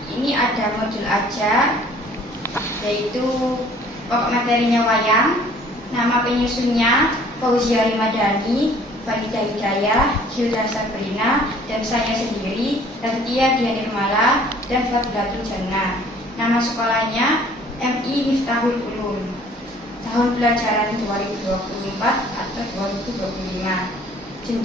Ini ada modul ajar, yaitu pokok materinya wayang, nama penyusunnya Fauzia Rimadhani, Faridah Hidayah, Gilda Sabrina, dan saya sendiri, Raditya Dian Nirmala, dan Fadlatul Jannah. Nama sekolahnya MI Miftahul Ulum. Tahun pelajaran 2024 atau 2025.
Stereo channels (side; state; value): both; normal; correlation 0.54